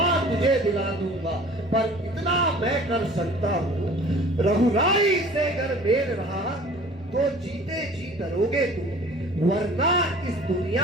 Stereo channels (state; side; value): normal; both; correlation 0.47